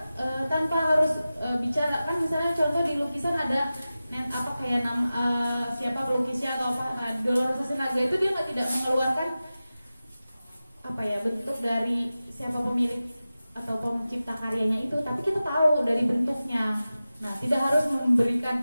tanpa harus bicara, kan misalnya contoh di lukisan ada kayak siapa pelukisnya atau apa. Nah, Dolorosa Sinaga itu dia tidak mengeluarkan bentuk dari siapa pemilik atau pencipta karyanya itu, tapi kita tahu dari bentuknya. Nah, tidak harus memberikan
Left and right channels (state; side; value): inverted; both; correlation -0.95